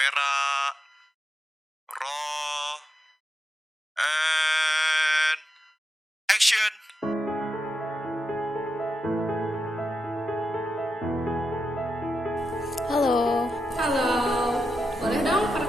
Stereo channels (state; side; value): normal; both; correlation 0.87